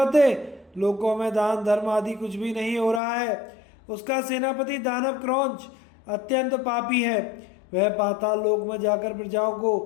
लोकों में दान धर्म आदि कुछ भी नहीं हो रहा है। उसका सेनापति दानव क्रौंच अत्यंत पापी है। वह पाताल लोक में जाकर प्रजाओं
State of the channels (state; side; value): drops out; right; at 3.0 s